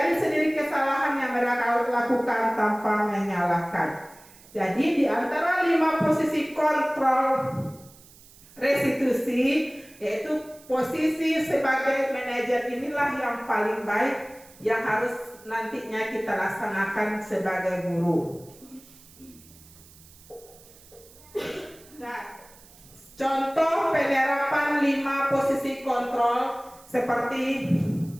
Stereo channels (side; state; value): right; noise; hiss, 24 dB below the sound